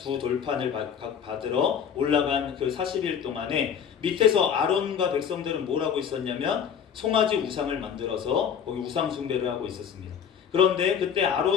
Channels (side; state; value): right; quieter; 7.9 dB